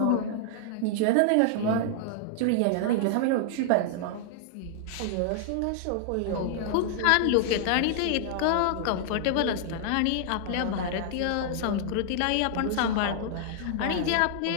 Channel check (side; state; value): both; different; correlation -0.01